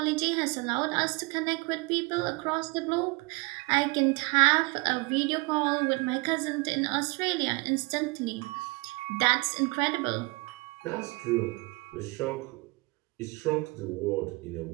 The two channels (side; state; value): left; quieter; 27.0 dB